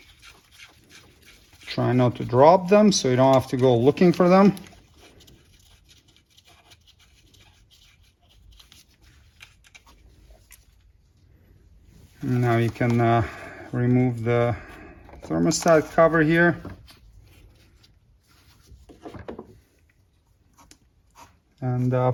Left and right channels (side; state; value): both; identical; correlation 1.00